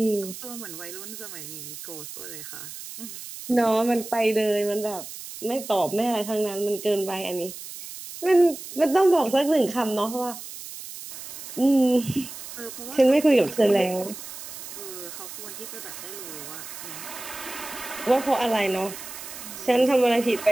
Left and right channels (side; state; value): right; noise; hiss, 12 dB below the sound